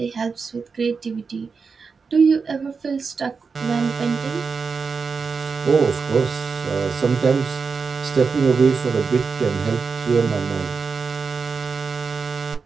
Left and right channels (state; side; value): quieter; left; 5.1 dB